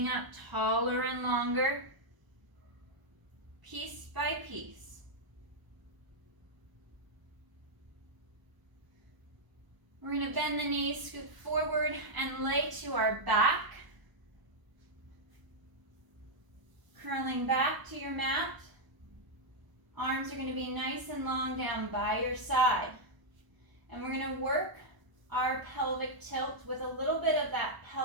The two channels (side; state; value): left; late; 1.0 ms